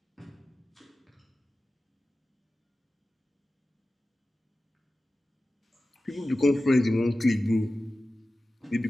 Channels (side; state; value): both; normal; correlation 0.95